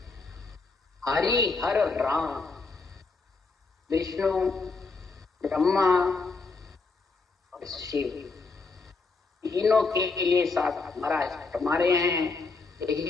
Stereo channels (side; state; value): right; quieter; 4.1 dB